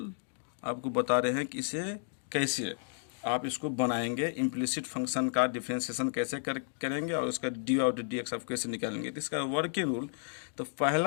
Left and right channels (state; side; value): silent; right; digital silence